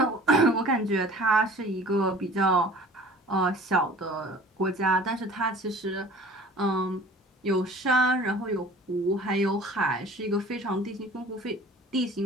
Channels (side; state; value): both; normal; correlation 0.46